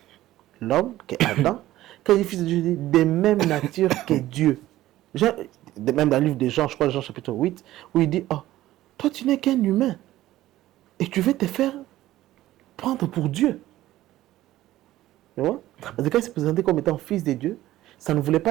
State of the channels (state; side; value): quieter; left; 15.1 dB